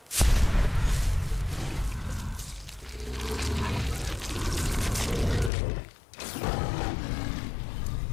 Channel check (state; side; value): drops out; right; at 5.5 s